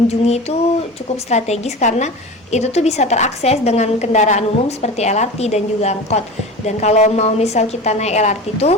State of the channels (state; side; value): normal; both; correlation 0.32